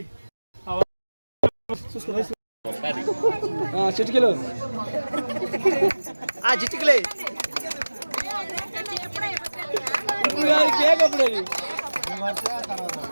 చిటికలు చిటికలే కేక్ అప్పుడు అది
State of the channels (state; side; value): inverted; both; correlation -1.00